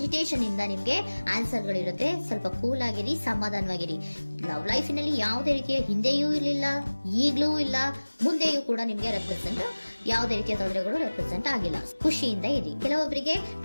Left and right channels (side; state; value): both; inverted; correlation -1.00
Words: ಇಂದ ನಿಮ್ಗೆ ಆನ್ಸರ್ ಗಳಿರುತ್ತೆ. ಸ್ವಲ್ಪ ಕೂಲ್ ಆಗಿರಿ, ಸಮಾಧಾನವಾಗಿರಿ. ಲವ್ ಲೈಫಿನಲ್ಲಿ ಯಾವುದೇ ರೀತಿಯ ಹಿಂದೆಯೂ ಇರಲಿಲ್ಲ, ಈಗಲೂ ಇಲ್ಲ, ಮುಂದೆಯೂ ಕೂಡ ನಿಮ್ಗೆ ಯಾವುದೇ ರೀತಿಯ ತೊಂದರೆಗಳು ರೆಪ್ರೆಸೆಂಟ್ ಆಗಿಲ್ಲ. ಖುಷಿಯಿಂದ ಇರಿ. ಕೆಲವೊಬ್ಬರಿಗೆ